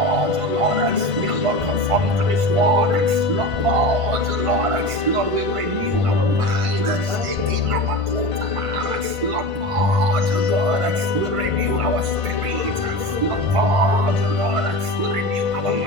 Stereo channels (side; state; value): left; late; 1.5 ms